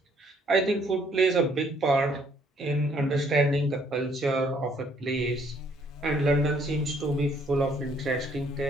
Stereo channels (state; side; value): normal; both; correlation 0.65